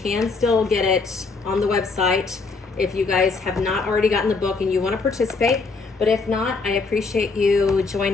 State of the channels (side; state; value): right; quieter; 4.2 dB